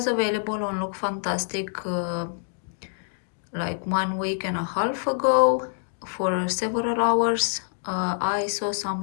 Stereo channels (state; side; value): silent; right; digital silence